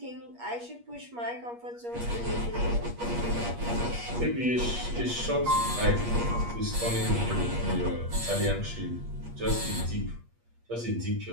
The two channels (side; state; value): left; late; 8.4 ms